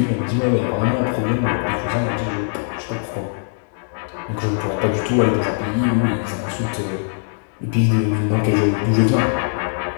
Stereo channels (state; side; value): silent; right; 65 dB below the other